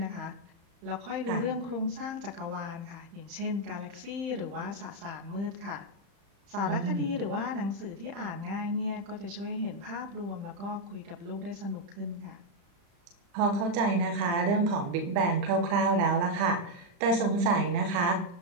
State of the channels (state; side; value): late; left; 35 ms